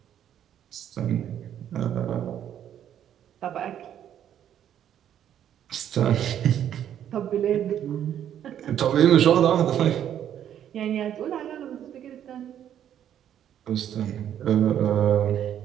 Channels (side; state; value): left; quieter; 10.1 dB